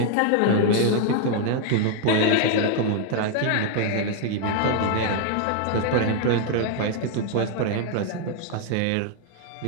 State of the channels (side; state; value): both; different; correlation 0.00